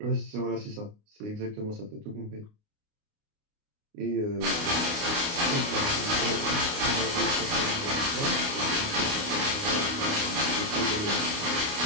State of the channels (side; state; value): left; late; 29 ms